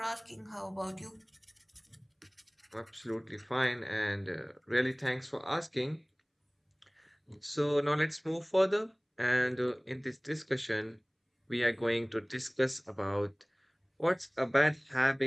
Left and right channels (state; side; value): identical; both; correlation 1.00